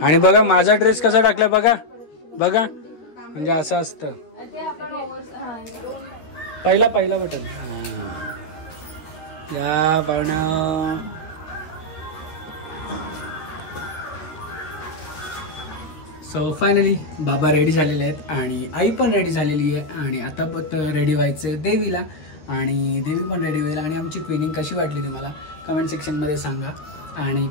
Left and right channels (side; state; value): right; late; 13 ms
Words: आणि बघा माझा ड्रेस कसा टाकलाय बघा बघा, म्हणजे असं असतं. पहिला बटन या पाहुणा. सो फायनली बाबा रेडी झालेले आहेत आणि आई पण रेडी झालेली आहे. आणि आता पण रेडी व्हायचं देवीला, आणि देवी पण रेडी होईल. आणि आमची ट्रेनिंग कशी वाटली तुम्हाला कमेंट सेक्शनमध्ये सांगा. आणि